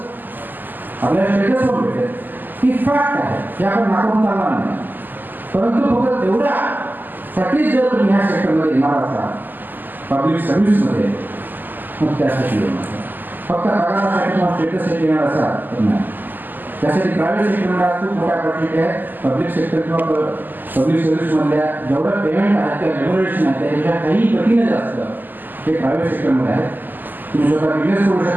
आपल्याला स्टेटस पण भेटेल. ही फॅक्ट आहे, हे आपण नाकारून चालणार नाही. परंतु फक्त तेवढ्यासाठीच जर तुम्ही ह्या सेक्टरमध्ये येणार असाल, पब्लिक सर्व्हिसमध्ये, मग त्यासाठी येणार. फक्त पगारासाठी किंवा स्टेटससाठी येणार असाल तर नाही. त्यासाठी प्रायव्हेट सेक्टरला खूप मोठ्या ऑपॉर्च्युनिटी आहे. पब्लिक सेक्टर किंवा पब्लिक सर्व्हिसमधल्या जेवढं पेमेंट आहे किंवा रेग्युलेशन आहे त्यापेक्षा काही पटीने जास्त हे प्रायव्हेट सेक्टरमध्ये आहे. तुम्ही स्वतः बिझनेस करू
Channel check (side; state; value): left; late; 0.088 ms